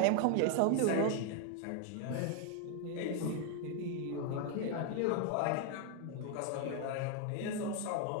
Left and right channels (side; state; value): both; different; correlation 0.01